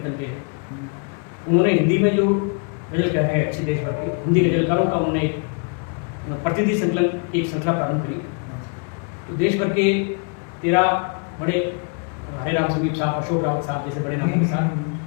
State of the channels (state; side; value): quieter; right; 38.7 dB